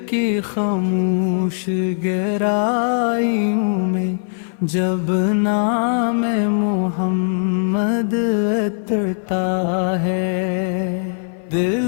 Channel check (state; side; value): silent; right; 57 dB below the other